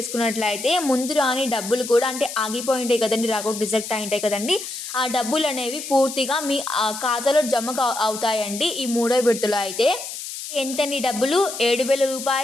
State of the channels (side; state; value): left; noise; hiss, 8 dB below the sound